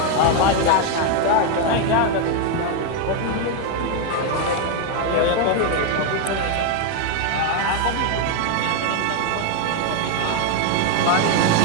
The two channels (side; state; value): both; different; correlation 0.01